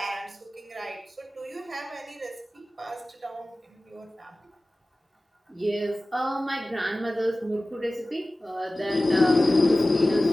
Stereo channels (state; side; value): normal; both; correlation 0.97